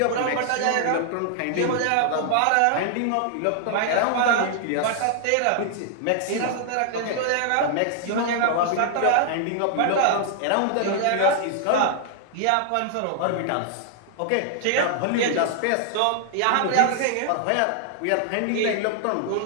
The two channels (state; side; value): different; both; correlation 0.00